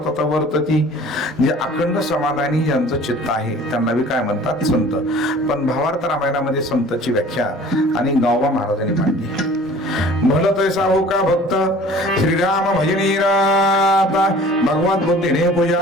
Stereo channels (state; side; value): normal; both; correlation 0.47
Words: वर्तती, जे अखंड समाधानी ज्यांचं चित्त आहे त्यांना बी काय म्हणतात? संत. पण भावार्थ रामायणामध्ये संतची व्याख्या आणि गावबा महाराजांनी मांडली. भल तैसा हो का भक्त श्रीराम भजनी राता, भगवत बुद्धीने